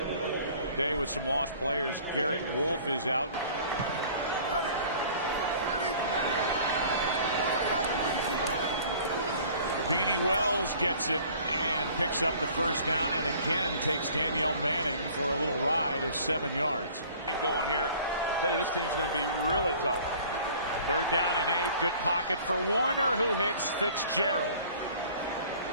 day with some lost players. Garrett Wolf is out. Beanie Wells gets it and picks up the 1st down, and again takes Danielle Manning for a little ride of 7 yards. Going here, I tell you, this team's going to be really tough. 3rd down and 8. Good pocket for Warner, who hits Fitzgerald.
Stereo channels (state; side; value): inverted; both; correlation -0.50